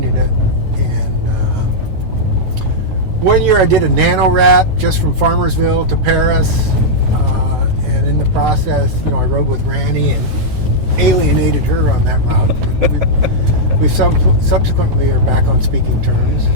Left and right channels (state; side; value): late; left; 9.3 ms